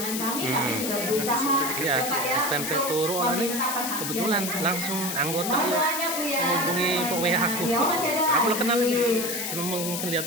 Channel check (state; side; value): noise; left; hiss, 3 dB below the sound